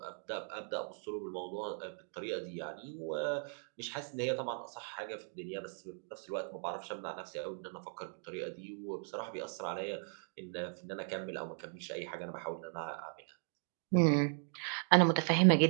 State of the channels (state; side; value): silent; left; 53 dB below the other